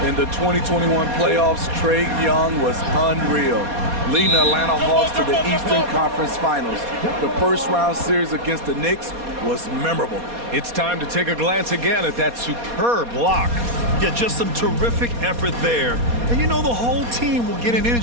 In the 2021 playoffs, Trae Young was unreal, leading the Atlanta Hawks to the Eastern Conference Finals. The first-round series against the Knicks was memorable. It's time to take a glance again at that superb block. Yeah, just some terrific effort there. And you know the whole team will get an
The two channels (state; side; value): late; left; 4.2 ms